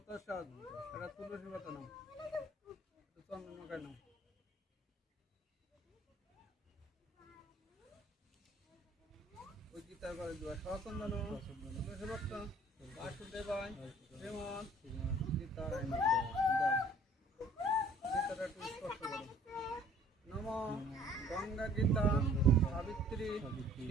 এটা তুলসী পাতা নাম, চন্দন মাখায় নাম। ওই গীতার ঘরে দেওয়া সচন্দন তুলসী পাতা বাসুদেবায় শ্রীমৎ গীতারায় গীতাটা একটু স্পষ্ট করো। নম গঙ্গা গীতা সাবিত্রী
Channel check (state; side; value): normal; both; correlation 0.55